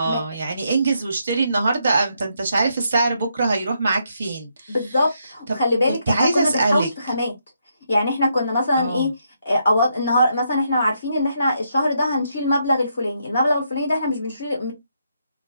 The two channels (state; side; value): inverted; both; correlation -0.77